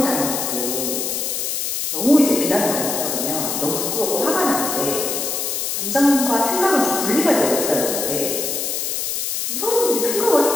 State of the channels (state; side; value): noise; left; hiss, 2 dB below the sound